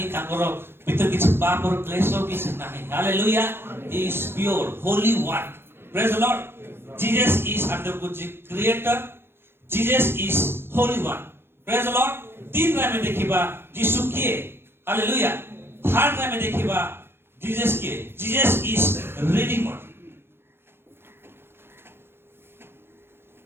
ताकर भीतर किछ पाप और क्लेश किछ नाही hallelujah he is pure Holi one praise the Lord Jesus is under the creator Jesus is holy one praise the lord तीन रा में देखिबा यीशु किए हालेलुया थर्ड रा में देखिबा जीसस किए जीसस इज रिडीमर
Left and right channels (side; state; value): left; late; 0.11 ms